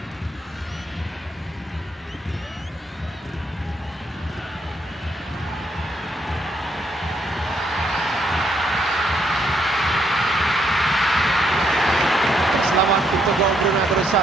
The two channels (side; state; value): both; normal; correlation 0.74